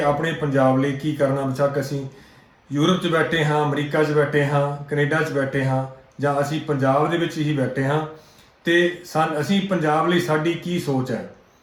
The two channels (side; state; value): both; identical; correlation 1.00